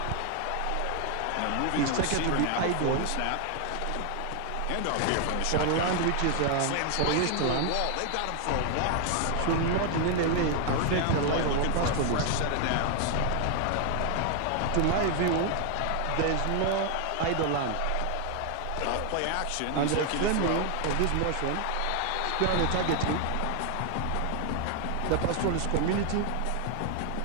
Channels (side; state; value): both; different; correlation 0.00